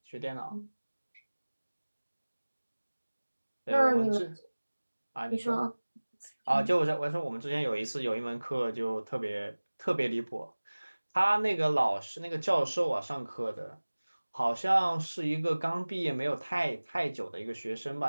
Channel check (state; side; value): inverted; both; correlation -1.00